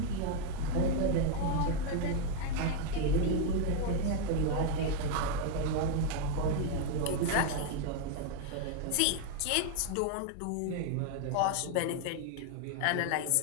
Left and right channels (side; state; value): both; different; correlation 0.01